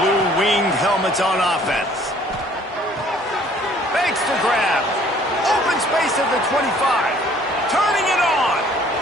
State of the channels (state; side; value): normal; both; correlation 0.57